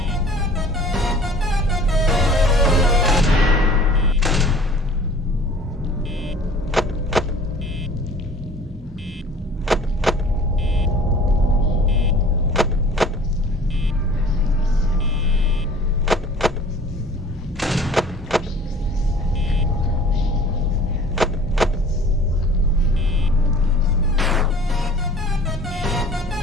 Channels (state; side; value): normal; both; correlation 0.48